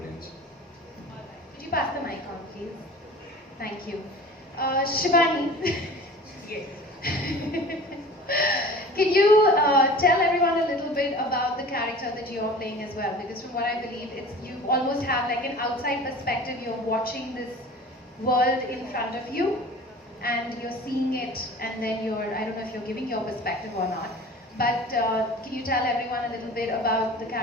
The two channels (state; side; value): normal; both; correlation 0.41